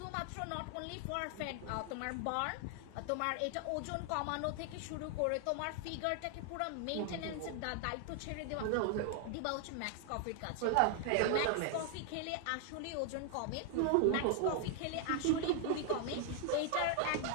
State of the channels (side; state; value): both; different; correlation 0.00